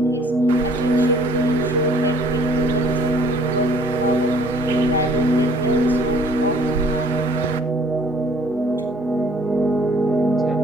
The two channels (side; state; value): both; normal; correlation 0.57